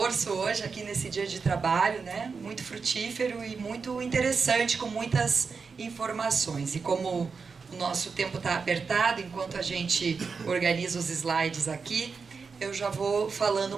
hoje aqui nesse dia de trabalho, né? Muito frutífero e muito interessante, com muitas informações. E como o nosso tempo está apertado, enquanto a gente organiza os slides aqui, eu já vou falando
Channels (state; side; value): quieter; left; 5.1 dB